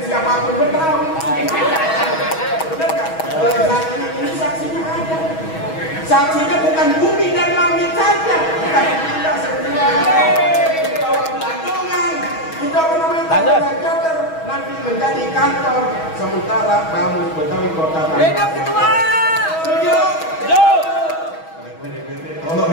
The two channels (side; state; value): right; late; 6.2 ms